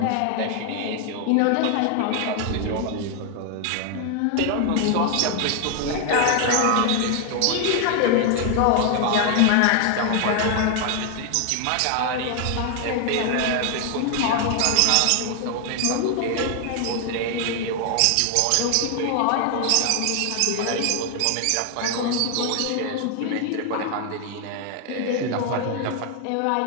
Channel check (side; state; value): both; different; correlation 0.00